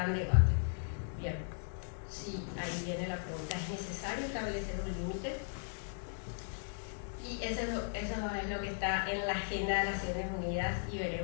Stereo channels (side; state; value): right; silent; 53 dB below the other